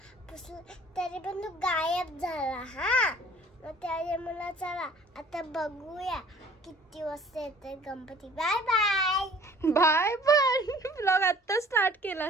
तरी पण तो गायब झाला. हा मग त्यामुळे चला आता बघूया किती वाजता येते गणपती. Bye bye bye. पण ब्लॉग आता स्टार्ट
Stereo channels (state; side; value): normal; both; correlation 0.52